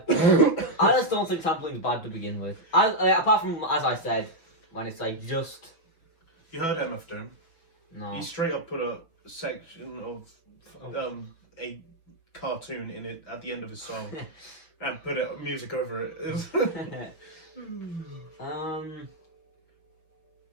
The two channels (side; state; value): right; late; 6.0 ms